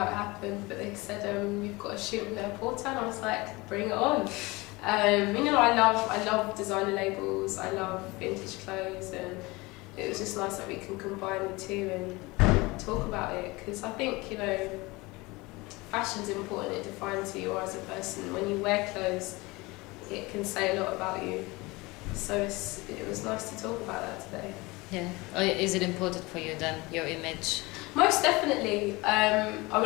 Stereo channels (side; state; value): right; quieter; 23.2 dB